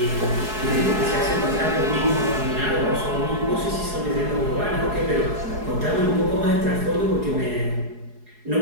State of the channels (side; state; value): left; late; 4.7 ms